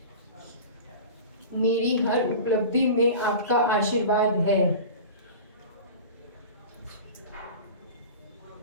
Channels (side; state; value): both; inverted; correlation -0.35